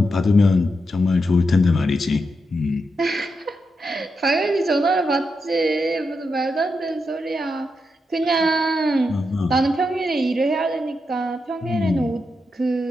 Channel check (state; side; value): normal; both; correlation 0.85